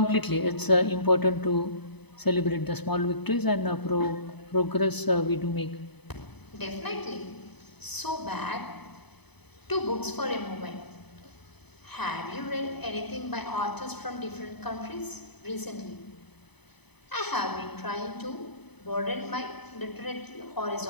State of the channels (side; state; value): right; late; 0.99 ms